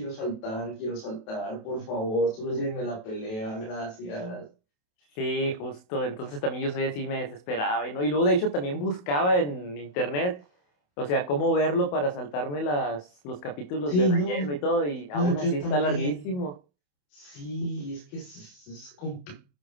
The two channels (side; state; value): right; late; 28 ms